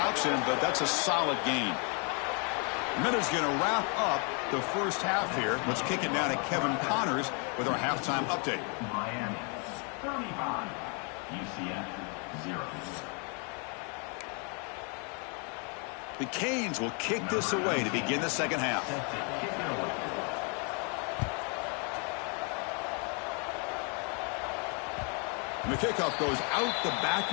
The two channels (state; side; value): quieter; right; 36.4 dB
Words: him, but that's a solid gain. Miller's going to wrap up the first half here. Let's kick it down to Kevin Connors with our halftime update. Miami 35, UCF 0. The Canes will kick this away to begin the second half. And the kickoff goes out the back